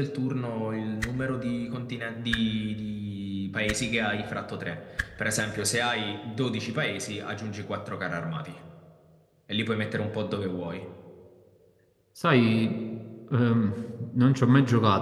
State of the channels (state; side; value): identical; both; correlation 1.00